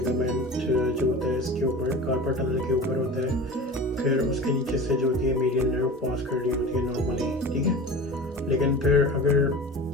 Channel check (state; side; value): normal; both; correlation 0.35